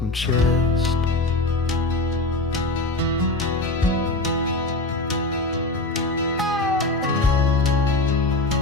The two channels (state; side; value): quieter; right; 3.1 dB